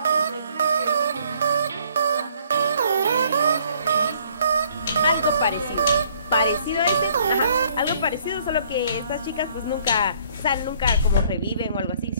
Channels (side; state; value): both; inverted; correlation -0.62